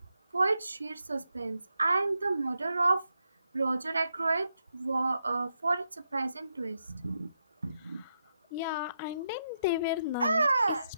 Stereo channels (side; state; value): both; inverted; correlation -0.83